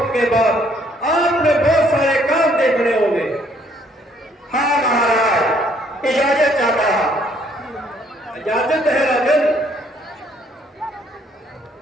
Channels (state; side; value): normal; both; correlation 0.65